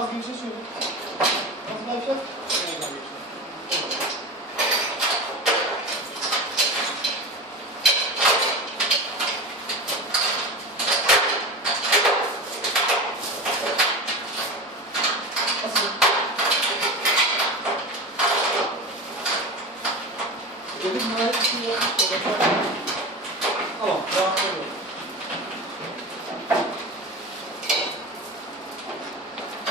bir şey söyle. Nasıl yapacağız? Dedim bunlar bir şey yok. Tamam, rahat oluyor.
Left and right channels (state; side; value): normal; both; correlation 0.27